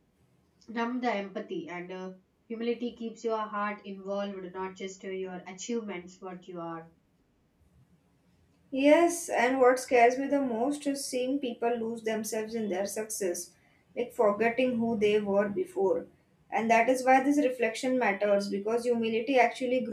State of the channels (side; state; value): both; identical; correlation 1.00